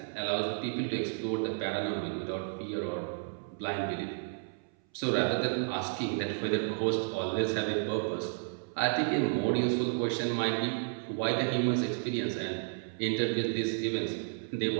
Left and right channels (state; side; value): silent; left; 56 dB below the other